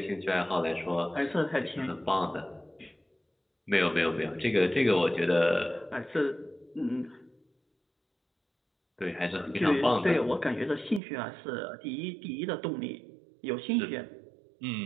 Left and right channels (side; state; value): left; drops out; at 11.0 s